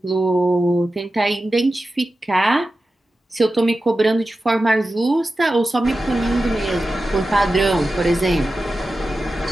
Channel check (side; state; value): both; normal; correlation 0.93